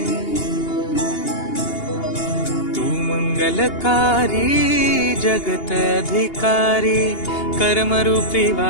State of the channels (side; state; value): right; late; 2.8 ms